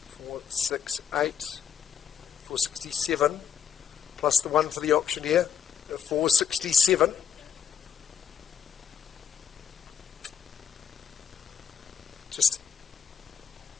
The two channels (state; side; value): quieter; right; 8.1 dB